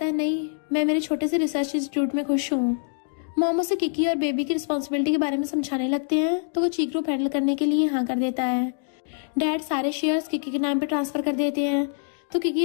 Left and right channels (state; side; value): silent; right; digital silence